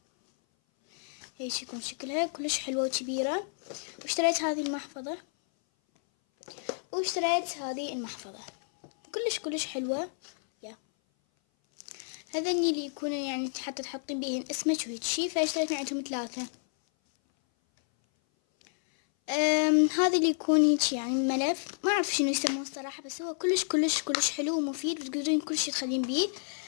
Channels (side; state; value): right; silent; 57 dB below the other